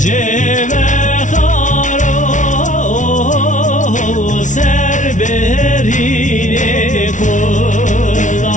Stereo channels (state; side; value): late; right; 0.37 ms